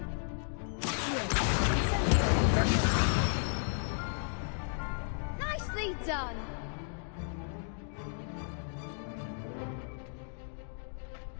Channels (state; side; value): silent; right; 55 dB below the other